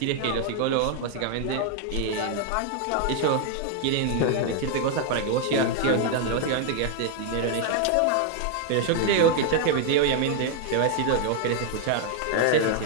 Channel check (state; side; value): different; both; correlation 0.00